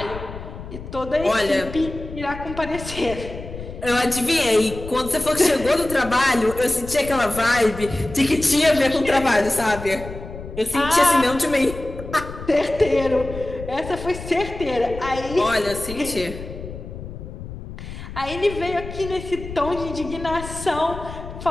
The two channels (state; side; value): noise; left; rumble, 11 dB below the sound